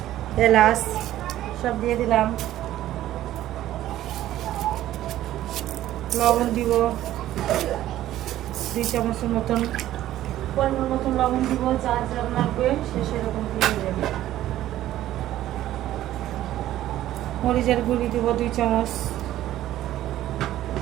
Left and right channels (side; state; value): left; quieter; 13.6 dB